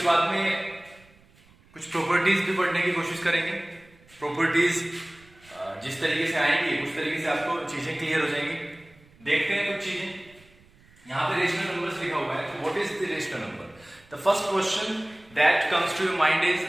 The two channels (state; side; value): noise; right; rumble, 28 dB below the sound